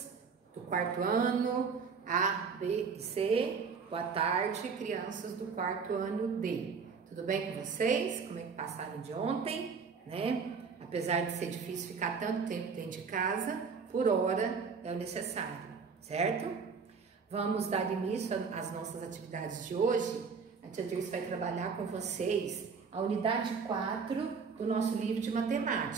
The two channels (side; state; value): left; quieter; 5.5 dB